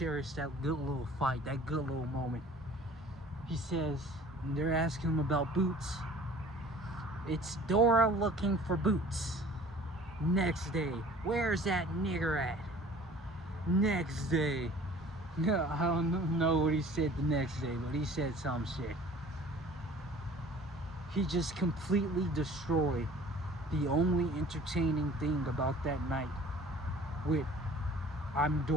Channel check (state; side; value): normal; both; correlation 0.48